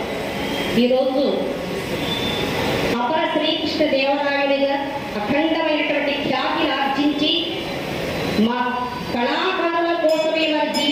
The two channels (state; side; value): identical; both; correlation 1.00